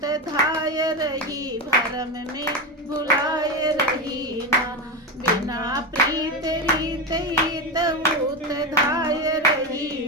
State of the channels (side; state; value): both; normal; correlation 0.14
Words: धाय रही, भरम में भुलाए रही ना। बिना प्रीत रीत ईत ऊत धाय